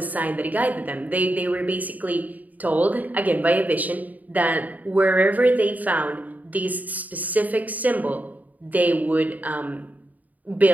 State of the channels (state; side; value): late; left; 0.078 ms